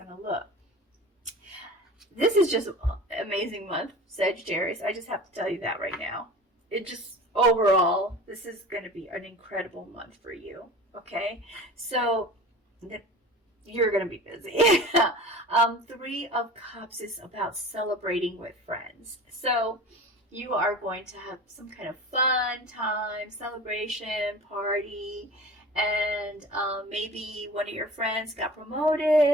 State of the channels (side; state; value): both; normal; correlation 0.38